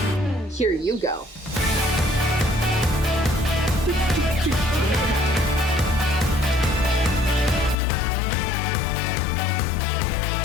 Here you go.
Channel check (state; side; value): drops out; right; at 7.8 s